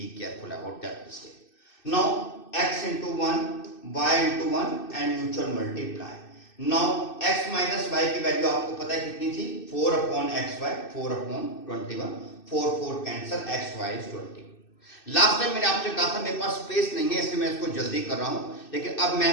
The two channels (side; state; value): right; late; 2.6 ms